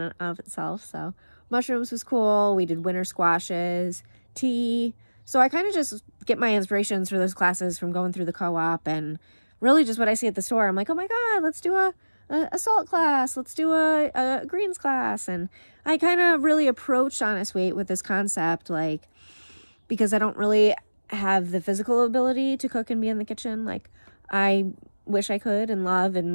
of itself. So mushrooms was cool. We did winter squashes, tea. So I kind of just get my inspirations for those classes from going through the co-op and really just what I see at the store. I'm like, oh my God, let's do a salt class, let's do a greens class. And I kind of really approached Honest Weight with this concept, like, because I don't really have the physical ability to cook and be in the kitchen like I wish I could and love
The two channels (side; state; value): both; inverted; correlation -1.00